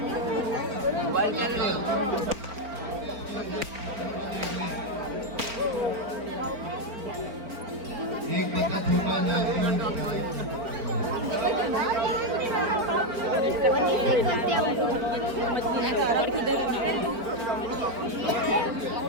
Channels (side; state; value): left; late; 4.4 ms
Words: एक बच्चा छोटा